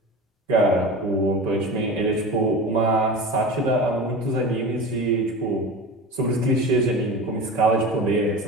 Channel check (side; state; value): both; normal; correlation 0.31